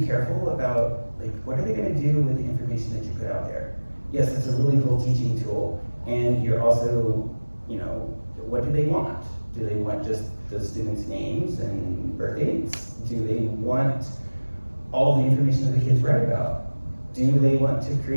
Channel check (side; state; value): both; inverted; correlation -1.00